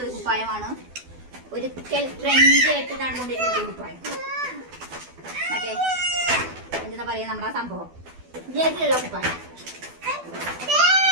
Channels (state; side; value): late; left; 12 ms